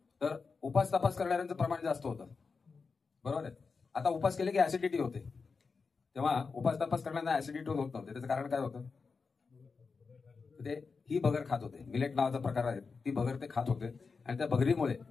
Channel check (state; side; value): quieter; right; 4.8 dB